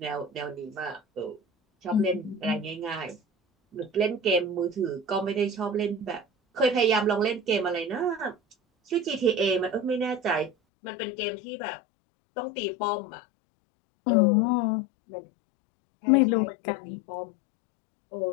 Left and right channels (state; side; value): drops out; right; at 10.5 s